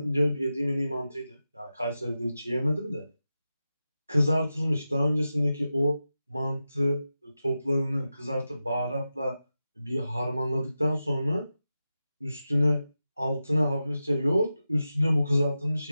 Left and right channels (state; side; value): inverted; both; correlation -0.91